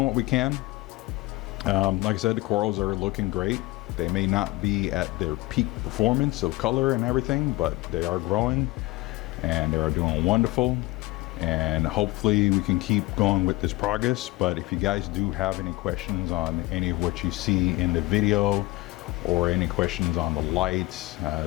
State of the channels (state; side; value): quieter; right; 20.9 dB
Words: what we can. Like I said, the corals are looking great. They may not be at their peak performance of color and everything, but they are growing and they are doing wonderful. And hopefully we can keep going with this progress. But if you guys do have any questions on any of what you see in the video, or any questions on the lights,